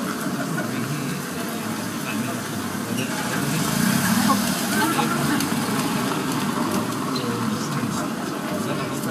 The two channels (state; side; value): identical; both; correlation 1.00